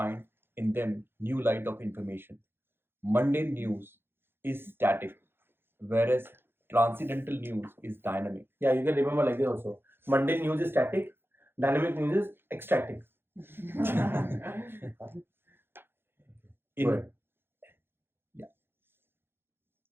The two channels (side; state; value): left; late; 0.10 ms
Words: in them new light of information. Mundane news is static, whereas transcendental news is dynamic. Yeah, you can remember like this also. Mundane news is static, dynamic news is ecstatic.